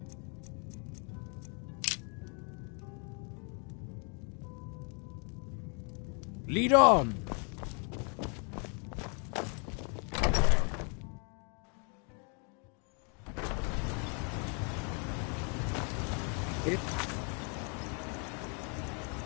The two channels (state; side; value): quieter; right; 37.7 dB